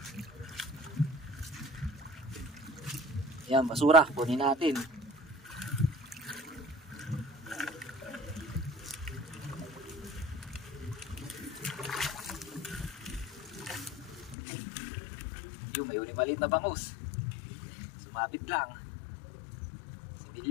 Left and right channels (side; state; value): right; drops out; at 14.4 s